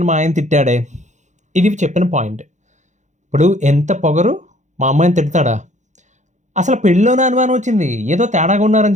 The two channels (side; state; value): left; late; 0.35 ms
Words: మా ఆయన తిట్టాడే. ఇది చెప్పిన పాయింట్. ఇప్పుడు ఎంత పొగరు, మా అమ్మాయిని తిడతాడా? అసలు పెళ్ళిలోనే అనుమానం వచ్చింది, ఏదో తేడాగా ఉన్నారని